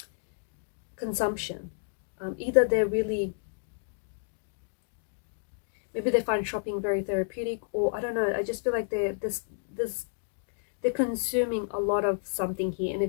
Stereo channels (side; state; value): right; silent; digital silence